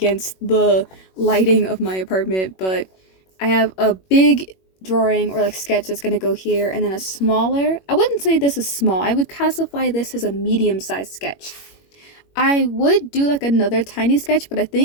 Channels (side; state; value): right; late; 21 ms